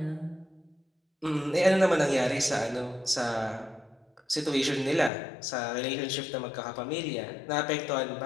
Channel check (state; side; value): drops out; right; at 5.1 s